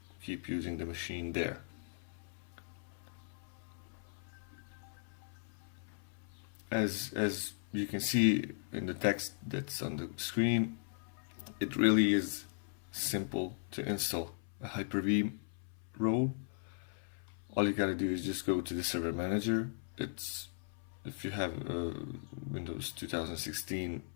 keep using the machine there. As you can see in the text that's on the screen, it really is simple to install a Hyper-V role. All you gotta do is just go to the server manager. If you have Windows 2016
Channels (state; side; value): silent; right; 52 dB below the other